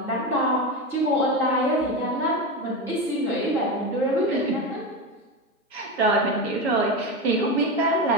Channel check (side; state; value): both; normal; correlation 0.18